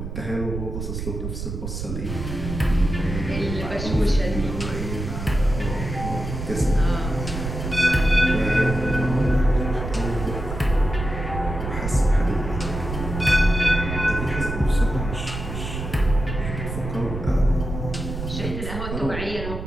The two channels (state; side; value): noise; right; rumble, 6 dB below the sound